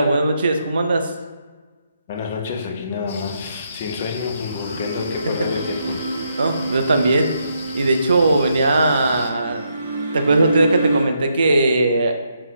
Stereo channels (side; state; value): both; inverted; correlation -0.78